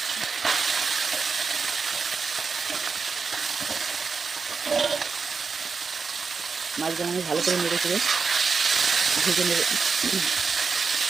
মাছগুলো আমি ভালো করে নেড়ে চেড়ে ভেজে নেব।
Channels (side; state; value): left; quieter; 5.1 dB